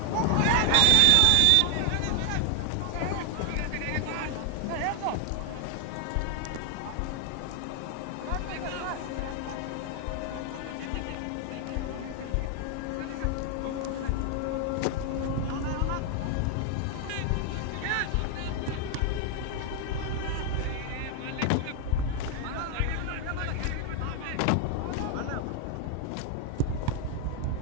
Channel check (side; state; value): both; different; correlation 0.00